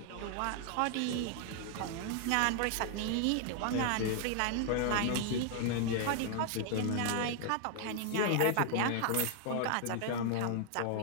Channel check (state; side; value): different; both; correlation 0.00